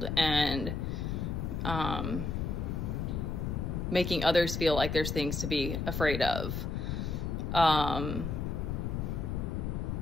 and making others feel like there's things to be afraid of.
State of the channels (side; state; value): left; noise; rumble, 2 dB below the sound